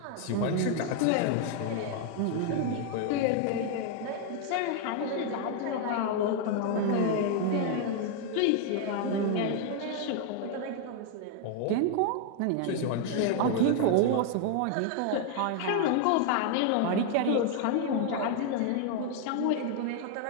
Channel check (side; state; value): both; different; correlation 0.00